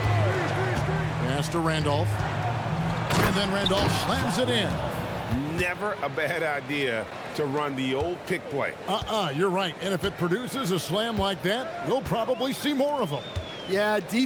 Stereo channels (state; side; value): identical; both; correlation 1.00